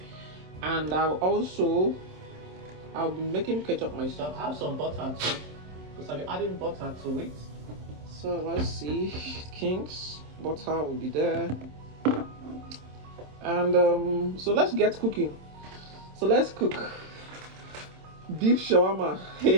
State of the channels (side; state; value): left; late; 27 ms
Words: And I'll be making ketchup myself. I have some butter too. because I'll be adding butter to it. So let's see, King's butter will be there. And so let's get cooking. So let's cook beef shawarma.